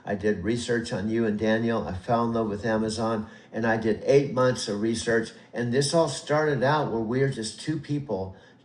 I did research on you and Daniel. I fell in love with Amazon, and I did 8 months of research. And this all started out where we were just two people.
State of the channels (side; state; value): both; identical; correlation 1.00